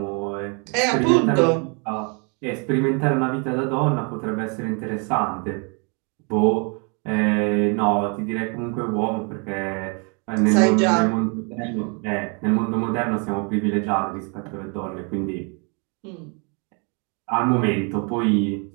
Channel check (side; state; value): left; quieter; 35.1 dB